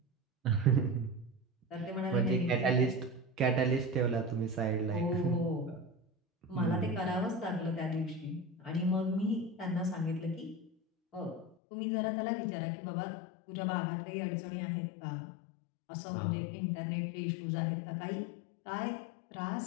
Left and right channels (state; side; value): drops out; right; at 11.6 s